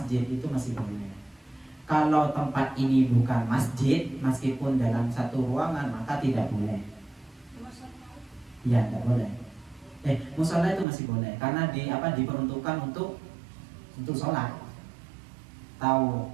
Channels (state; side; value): drops out; left; at 10.9 s